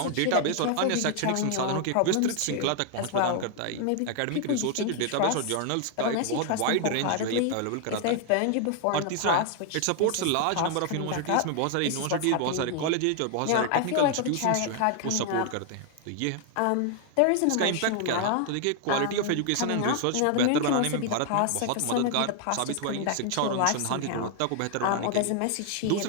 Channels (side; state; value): both; different; correlation 0.00